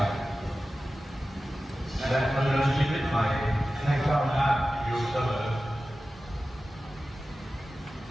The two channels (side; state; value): both; normal; correlation 0.95